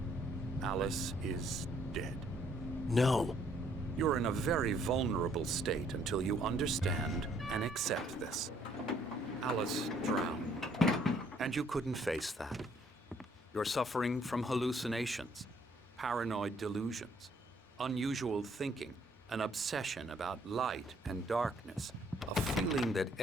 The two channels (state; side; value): normal; both; correlation 0.65